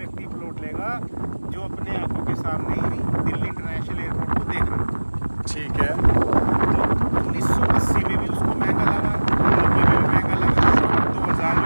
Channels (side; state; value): both; inverted; correlation -1.00